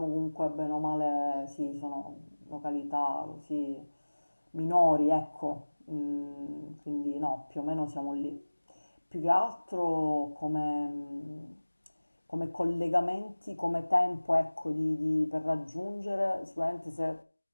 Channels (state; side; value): inverted; both; correlation -1.00